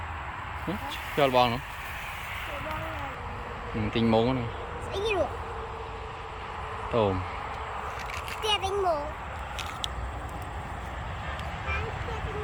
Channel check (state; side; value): identical; both; correlation 1.00